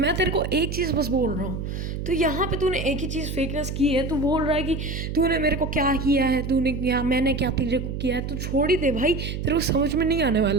तेरे को एक चीज़ बस बोल रहा हूँ, तो यहाँ पे तूने एक ही चीज़ फेकनेस की है। तू बोल रहा है कि तूने मेरे को क्या किया है, तूने क्या, मैंने क्या तेरे को किया है। तू छोड़ ही दे भाई, तेरे को समझ में नहीं आने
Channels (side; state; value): right; noise; hum, 5 dB below the sound